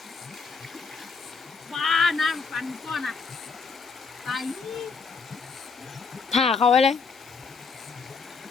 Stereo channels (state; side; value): quieter; right; 5.0 dB